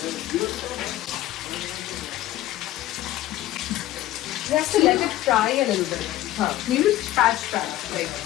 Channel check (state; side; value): quieter; right; 14.6 dB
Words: You have to let it fry a little bit. Maybe patch. Like,